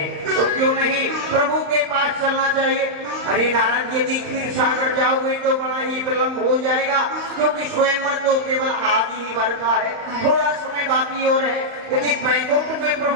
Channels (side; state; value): left; late; 35 ms